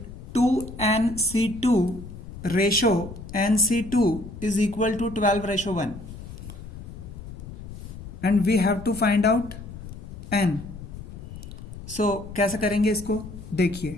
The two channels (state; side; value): noise; left; rumble, 12 dB below the sound